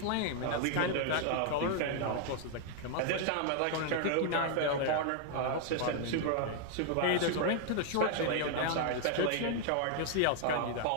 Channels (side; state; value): both; different; correlation 0.00